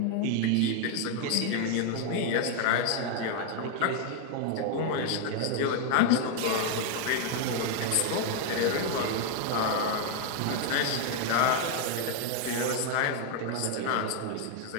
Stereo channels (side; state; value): both; different; correlation 0.00